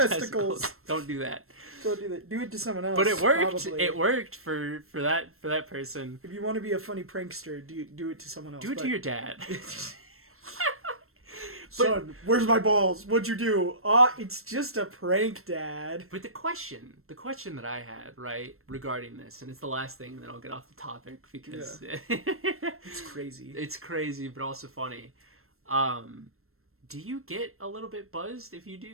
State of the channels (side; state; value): left; late; 0.62 ms